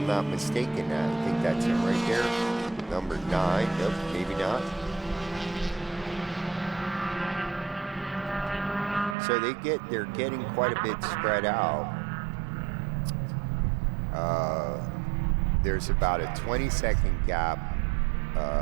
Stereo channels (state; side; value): drops out; left; at 9.2 s